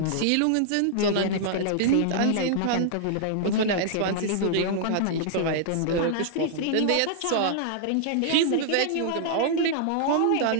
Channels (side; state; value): both; different; correlation -0.01